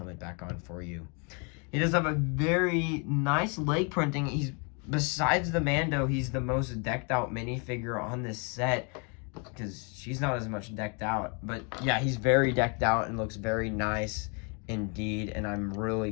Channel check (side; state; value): right; quieter; 35.4 dB